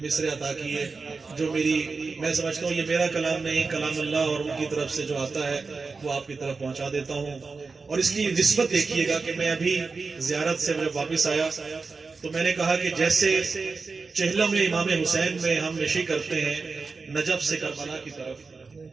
مصرے عطا کیے جو میں سمجھتا ہوں یہ میرا کلام نہیں، کلام اللہ، اور ان کی طرف سے جو آتا ہے وہ آپ کی طرف پہنچا دیتا ہوں. اور اس کی نسبت دیکھیے گا کہ میں ابھی زیارت سے جب واپس آیا تو میں نے کہا کہ جیسے چہلم امام حسین میں ہم نشی کرتے ہیں نجف سے کربلا کی طرف،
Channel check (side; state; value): left; quieter; 4.4 dB